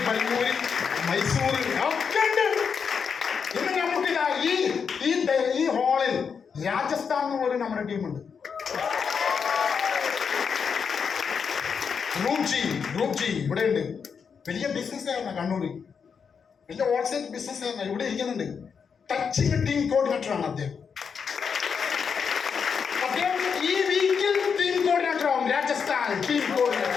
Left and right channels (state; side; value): quieter; right; 6.3 dB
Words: പയ്യൂര്, മൈസൂർ ഒക്കെ ഉണ്ട്. ഇന്ന് നമുക്കിതാ ഈ ഹാളിൽ രാജസ്ഥാൻ എന്ന് പോലും നമ്മുടെ ടീമുണ്ട്. ഗ്രൂപ്പ് ജി ഇവിടെ ഉണ്ട്. വലിയ ബിസിനസ് ആയിരുന്ന കണ്ണൂര്, വലിയ ഹോൾസെയിൽ ബിസിനസ് ആയിരുന്ന ഇവിടെ ഇരിക്കുന്നുണ്ട്. ടച്ചിങ് ടീം കോർഡിനേറ്റർ ആണ് അദ്ദേഹം. ഈ വീക്കിൽ ടീം കോർഡിനേറ്റർ ആവും. Rajasthan team